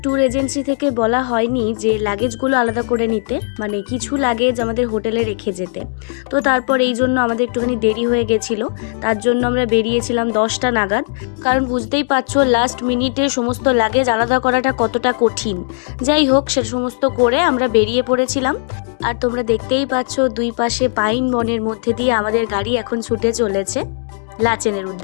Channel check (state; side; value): silent; right; digital silence